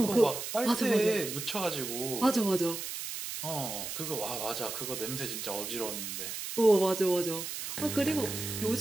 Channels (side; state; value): right; noise; hiss, 6 dB below the sound